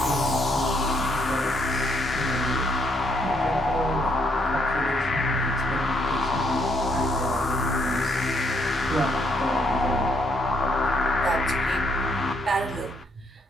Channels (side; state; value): both; normal; correlation 0.72